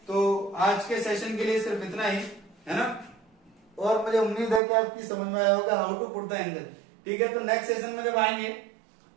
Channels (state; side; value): drops out; left; at 4.6 s